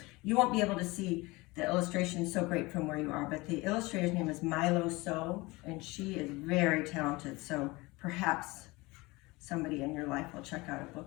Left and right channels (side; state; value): right; quieter; 22.8 dB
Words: You won't be able to see the illustration so great from where you are, but the illustrator's name is Milo So, and she is very talented, so perhaps somebody in your life will check out a